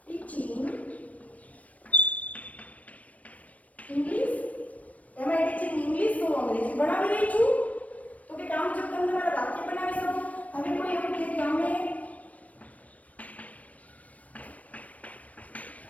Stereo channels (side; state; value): right; late; 0.068 ms